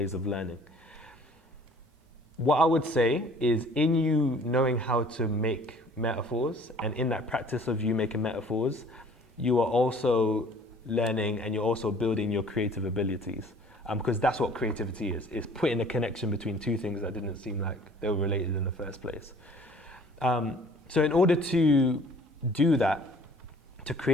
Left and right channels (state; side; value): normal; both; correlation 0.52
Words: of learning. What I would say is, in you knowing how to make metaphors, and in that practice of you making metaphors, you are also learning and you're also building your creative abilities. Because that's what creativity is putting a connection between two things that didn't seem like they were related in the first place. So in order to do that, to